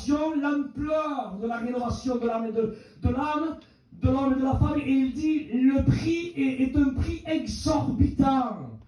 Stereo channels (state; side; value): identical; both; correlation 1.00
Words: l'ampleur de la rénovation de l'âme et de l'âme, de l'homme et de la femme, et il dit le prix est un prix exorbitant,